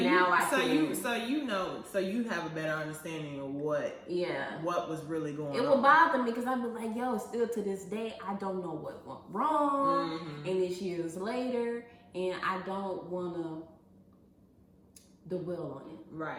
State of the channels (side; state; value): both; identical; correlation 1.00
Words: you have a better understanding of what was really going on. It will bother me because I'd be like, yo, still to this day, I don't know what went wrong, and it's years later, and I don't want to dwell on it.